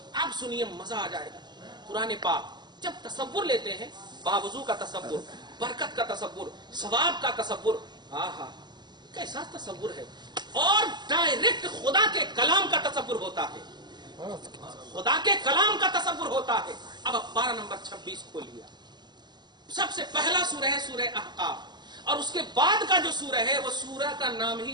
आप सुनिए, मजा आ जाएगा। कुरान पाक जब तसव्वुर लेते हैं, बावजू का तसव्वुर, बरकत का तसव्वुर, सवाब का तसव्वुर, आहा कैसा तसव्वुर है, और डायरेक्ट खुदा के कलाम का तसव्वुर होता है। خدا کے کلام کا تصور ہوتا ہے. اب پارہ نمبر 26 کھول لیا. سب سے پہلا سورہ ہے سورہ احقاف، اور اس کے بعد کا جو سورہ ہے وہ سورہ کا نام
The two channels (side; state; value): left; late; 0.21 ms